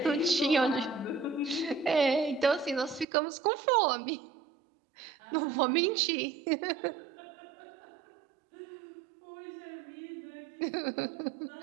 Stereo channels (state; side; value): drops out; left; at 3.1 s